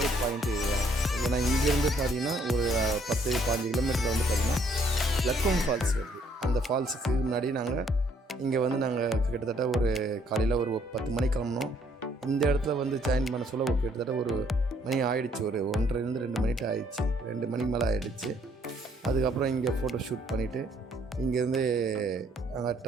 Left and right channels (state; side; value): normal; both; correlation 0.66